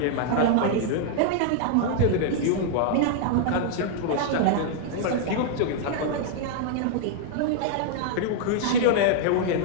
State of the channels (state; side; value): different; both; correlation -0.01